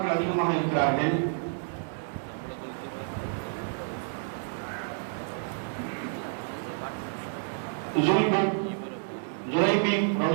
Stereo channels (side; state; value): left; silent; digital silence